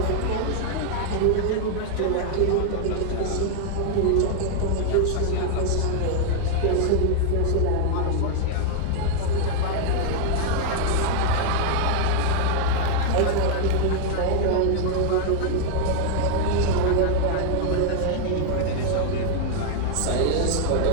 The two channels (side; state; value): both; different; correlation 0.00